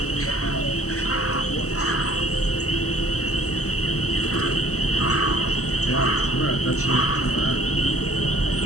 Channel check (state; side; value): late; right; 0.66 ms